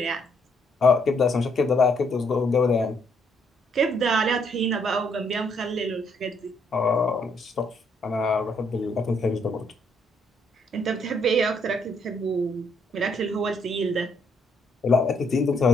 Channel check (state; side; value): normal; both; correlation 0.71